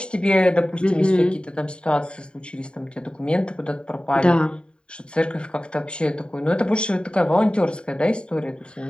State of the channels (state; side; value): late; right; 0.051 ms